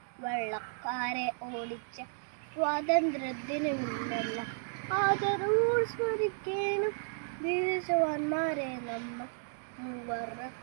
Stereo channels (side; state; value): left; silent; digital silence